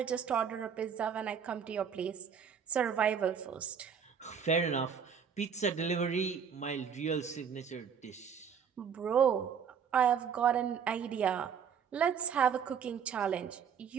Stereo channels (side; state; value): left; quieter; 7.2 dB